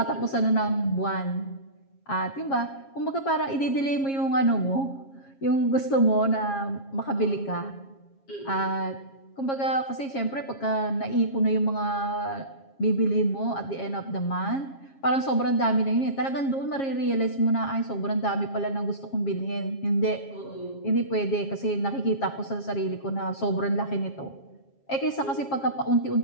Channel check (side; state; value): right; late; 7.3 ms